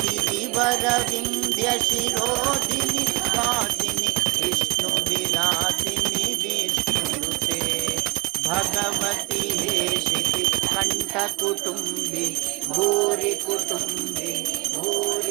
गिरिवरविन्द्यशिरोधिनि वासिनि विष्णुविलासिनि विष्णुनुते भगवति हेशिति कण्ठकुटुम्बि भूरि कुटुम्बि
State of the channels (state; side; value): quieter; left; 26.0 dB